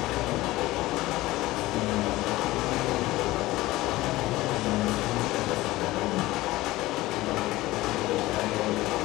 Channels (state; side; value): quieter; right; 18.1 dB